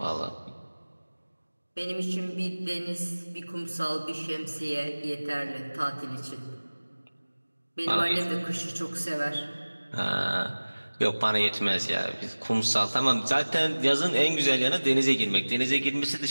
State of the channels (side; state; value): both; inverted; correlation -1.00